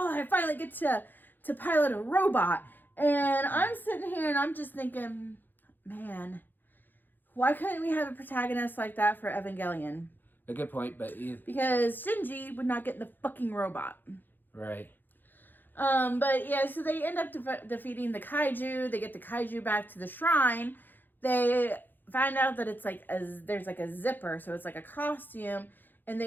I finally get to pilot a robot. And I'm sitting here and I'm just thinking, man, why couldn't we have a protagonist like that for Evangelion? A good point, but... Because Shinji would not get the fucking robot. Right. But yeah, so they end up defeating the kaiju. They get the kaiju back to the shrine. They find out that it's like there's like a zipper, so it's like a costume. And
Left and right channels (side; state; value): right; late; 0.090 ms